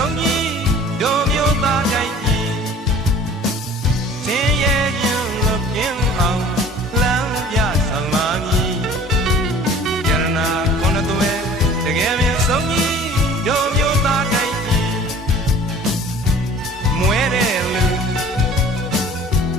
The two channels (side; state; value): both; normal; correlation 0.47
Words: ုံးကြီးတို့မျိုးသားတိုင်းကြီးသင်ရဲ့ခြင်းလို့ပြင်းအောင်လမ်းပြဆောင်ပါမည်ယရနာခုနှစ်သွဲတကယ်ပင်ဆုံးကြီးတို့မျိုးသားတိုင်းကြီးမွဲတဲ့